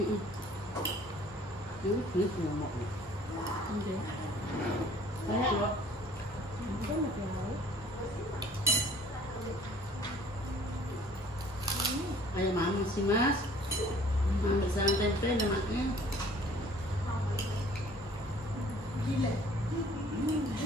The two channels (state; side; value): normal; both; correlation 0.54